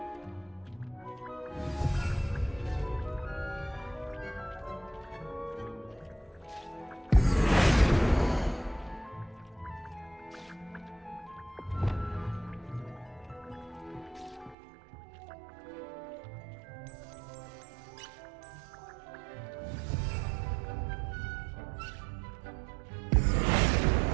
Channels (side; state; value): left; drops out; at 14.6 s